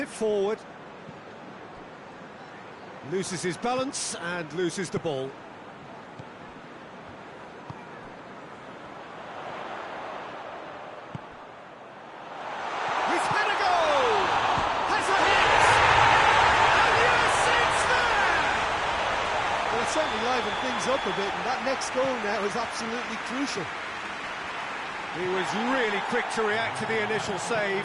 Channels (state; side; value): identical; both; correlation 1.00